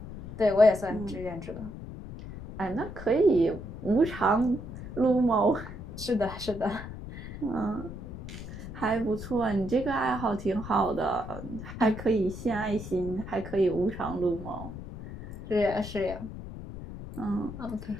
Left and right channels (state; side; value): noise; left; rumble, 11 dB below the sound